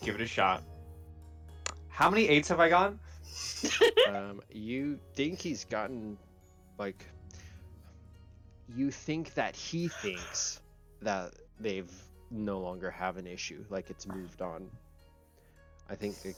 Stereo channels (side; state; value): both; identical; correlation 1.00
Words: Give it a shot. How many 8s have I gotten? You think he's gotten, like, you think that he thinks that they've no longer have an issue, like it's moved on. I think